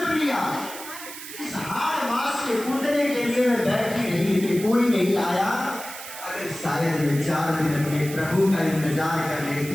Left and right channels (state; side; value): noise; right; hiss, 12 dB below the sound